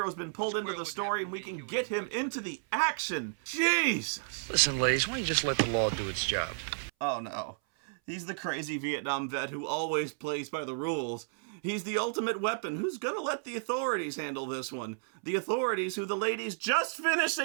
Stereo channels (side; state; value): left; silent; 56 dB below the other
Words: been pulled into the story and we can get him into the action. Jesus! Listen, ladies, why don't you just let the law do its job? Oh no. He's the crazy Vietnam vet who always plays by the rules. He's the ultimate weapon who's gonna let the authorities handle this one. The authorities who the ladies just finished